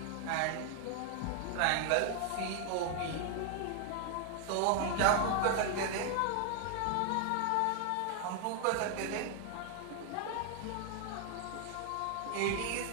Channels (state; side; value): different; both; correlation 0.00